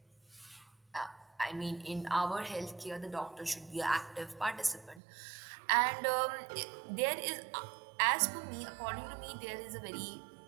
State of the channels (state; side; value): drops out; left; at 5.0 s